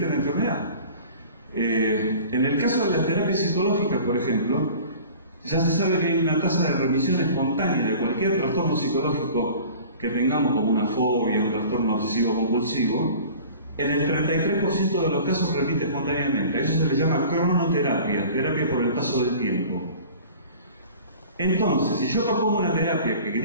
la enfermedad. En el caso de las terapias psicológicas, por ejemplo, ya se sabe que hay una tasa de remisión espontánea de cualquier trastorno psicológico que tengamos, como una fobia, un trastorno obsesivo compulsivo. En el 33% de los casos repite espontáneamente. A eso se le llama cronoterapia, terapia por el paso del tiempo. Entonces, si yo propongo una terapia que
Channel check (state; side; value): inverted; both; correlation -0.43